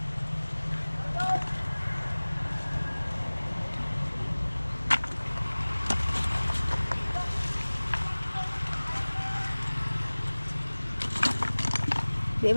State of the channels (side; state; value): both; inverted; correlation -1.00